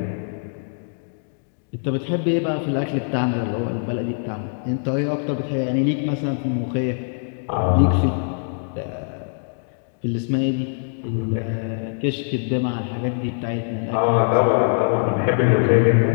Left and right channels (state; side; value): silent; right; digital silence